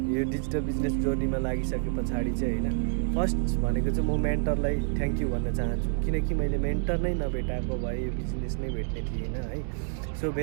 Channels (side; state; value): left; silent; 59 dB below the other